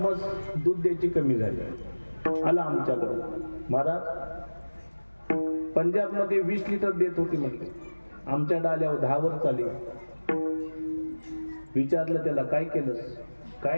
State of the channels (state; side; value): inverted; both; correlation -1.00